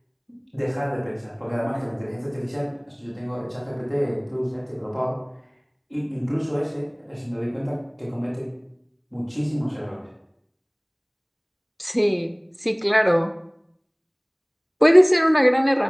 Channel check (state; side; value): identical; both; correlation 1.00